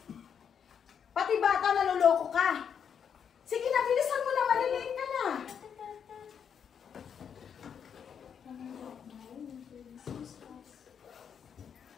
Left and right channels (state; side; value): quieter; right; 7.6 dB